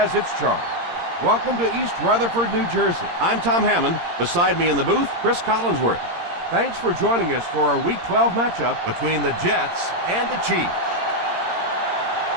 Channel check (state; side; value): late; left; 17 ms